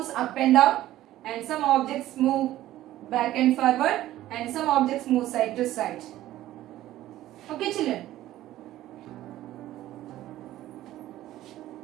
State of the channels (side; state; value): left; quieter; 14.4 dB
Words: up and down, and some objects move back and forward, and some objects move side to side. Okay, children.